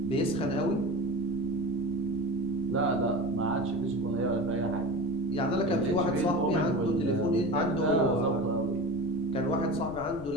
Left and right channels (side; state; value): left; noise; rumble, 14 dB below the sound